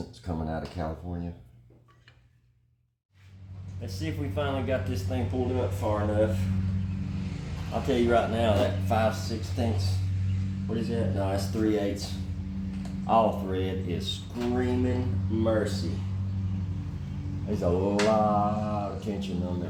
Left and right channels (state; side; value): identical; both; correlation 1.00